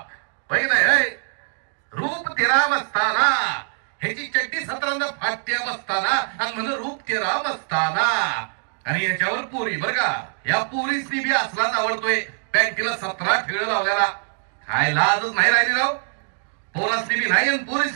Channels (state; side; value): silent; left; digital silence